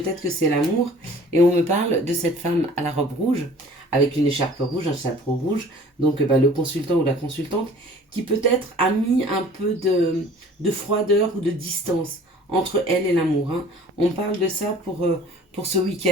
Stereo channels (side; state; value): both; normal; correlation 0.49